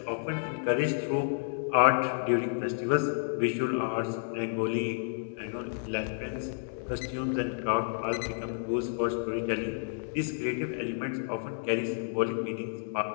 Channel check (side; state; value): right; silent; digital silence